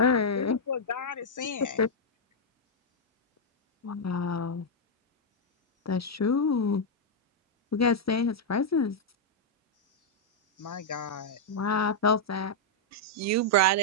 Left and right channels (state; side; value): normal; both; correlation -0.04